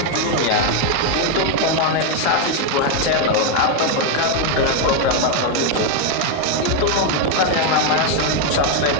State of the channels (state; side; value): different; both; correlation 0.01